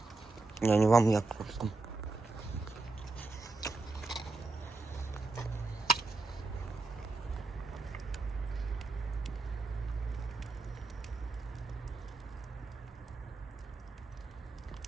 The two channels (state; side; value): quieter; left; 3.5 dB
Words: Я не вам, я просто.